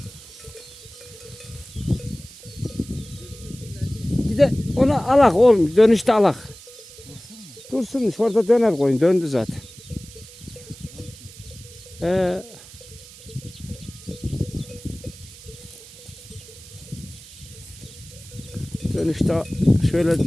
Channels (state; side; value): noise; right; hiss, 18 dB below the sound